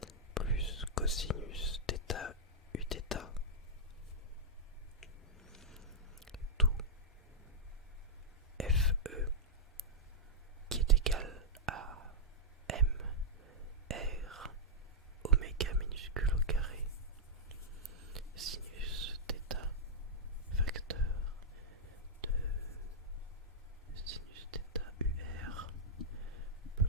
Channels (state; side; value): normal; both; correlation -0.10